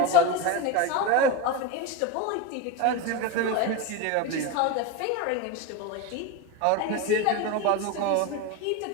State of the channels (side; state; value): both; different; correlation 0.05